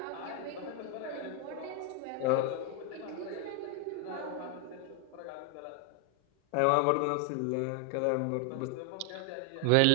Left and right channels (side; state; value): both; different; correlation 0.00